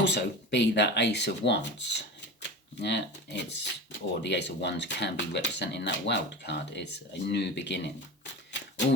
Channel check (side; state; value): both; normal; correlation 0.30